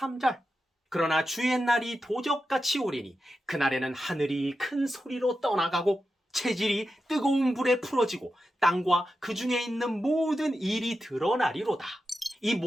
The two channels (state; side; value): normal; both; correlation 0.90